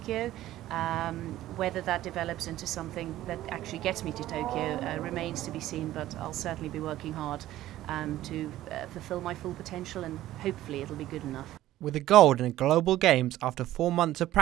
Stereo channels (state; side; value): quieter; left; 14.5 dB